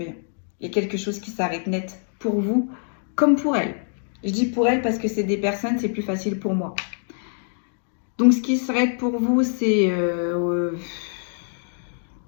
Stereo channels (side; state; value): right; silent; digital silence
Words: Il y a quelque chose qui s'arrête net pour vous, comme pour elle. Je dis pour elle parce que c'est des personnes, c'est plus facile pour moi. Donc, ce qui s'arrête pour vous, c'est